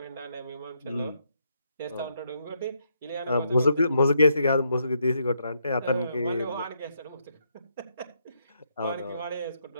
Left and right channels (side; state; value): both; inverted; correlation -0.76